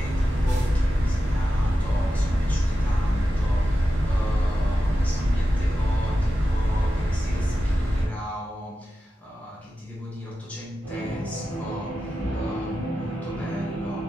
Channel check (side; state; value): both; normal; correlation 0.92